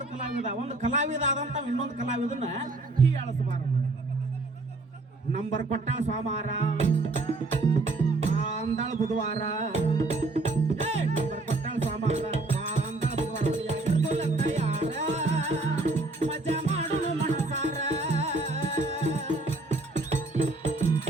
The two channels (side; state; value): left; quieter; 3.1 dB